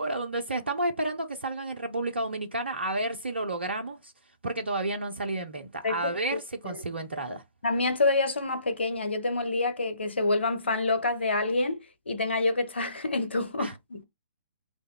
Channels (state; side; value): inverted; both; correlation -0.62